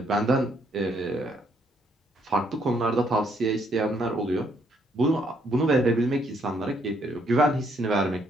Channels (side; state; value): both; normal; correlation 0.71